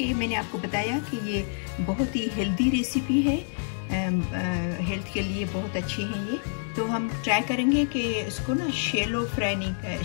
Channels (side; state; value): right; silent; digital silence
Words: मैंने आपको बताया कि ये बहुत ही हेल्दी रेसिपी है, हेल्थ के लिए बहुत अच्छी है ये। तो हम ट्राई करेंगे कि इसको ना शैलो